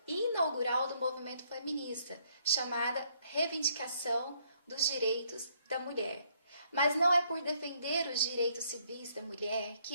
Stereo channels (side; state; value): both; inverted; correlation -0.69